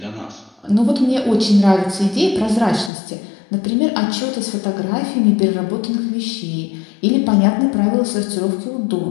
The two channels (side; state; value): right; drops out; at 2.9 s